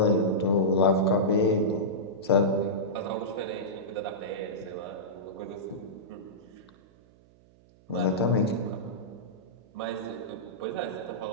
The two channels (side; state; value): right; noise; hum, 28 dB below the sound